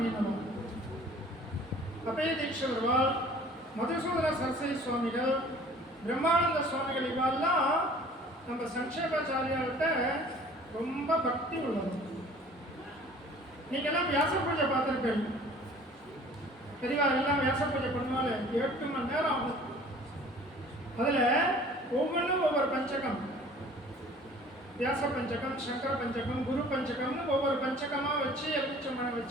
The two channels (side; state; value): both; normal; correlation 0.49